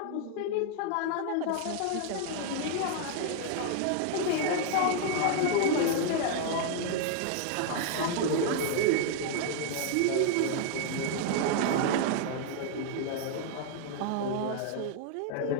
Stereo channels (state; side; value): different; both; correlation 0.00